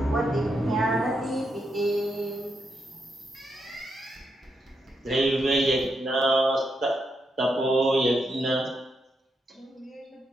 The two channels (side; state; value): both; normal; correlation 0.82